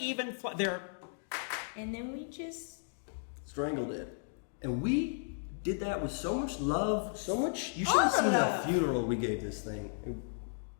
They're And then we just Strangled it. And we did that with so much love, so much. You should have seen the funeral we gave this thing.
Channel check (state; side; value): silent; right; digital silence